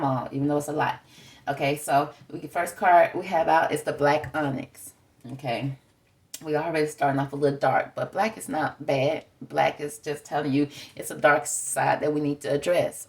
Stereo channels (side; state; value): both; identical; correlation 1.00